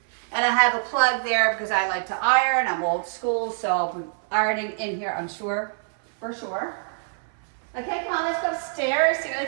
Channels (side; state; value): left; silent; 62 dB below the other